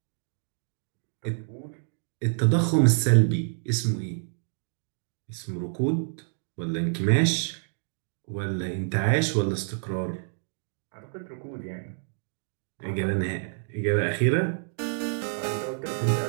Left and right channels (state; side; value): silent; left; digital silence